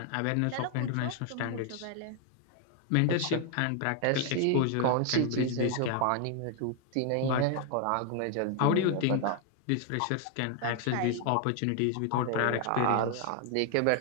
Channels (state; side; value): different; both; correlation 0.00